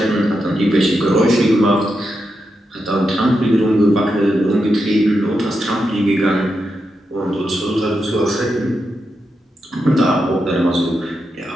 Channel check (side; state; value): both; normal; correlation 0.86